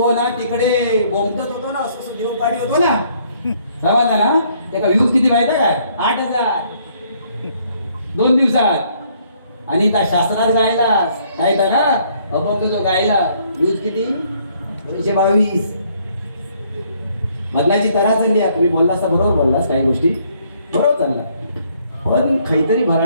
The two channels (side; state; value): both; inverted; correlation -0.66